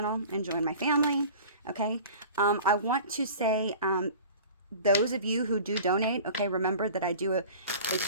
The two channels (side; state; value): both; inverted; correlation -0.41